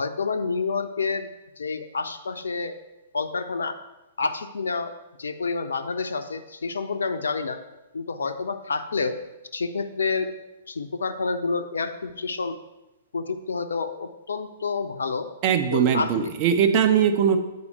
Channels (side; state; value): both; inverted; correlation -0.52